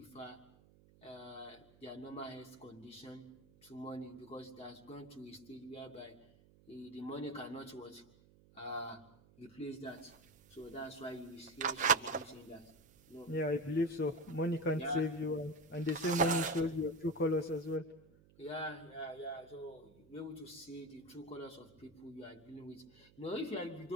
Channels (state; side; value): noise; right; hum, 26 dB below the sound